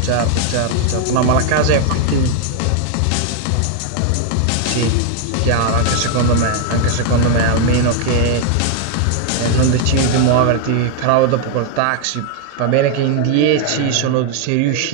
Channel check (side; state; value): both; different; correlation 0.00